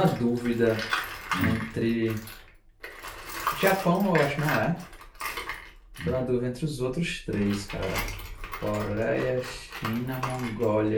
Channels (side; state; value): both; identical; correlation 1.00